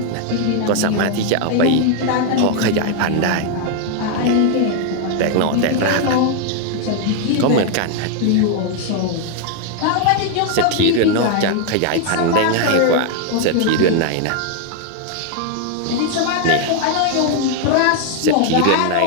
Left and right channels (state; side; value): different; both; correlation 0.00